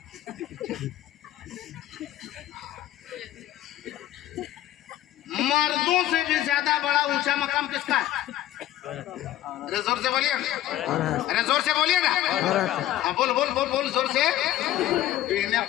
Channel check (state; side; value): quieter; right; 13.7 dB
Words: मर्दों से भी ज्यादा बड़ा ऊंचा मकाम किसका है? अरे जोर से बोलिए, अरे जोर से बोलिए ना। हाँ बोल बोल बोल बोल जोर से, तो इन्हें